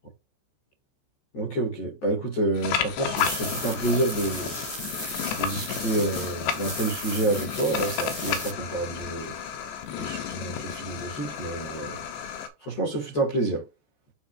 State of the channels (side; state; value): right; late; 14 ms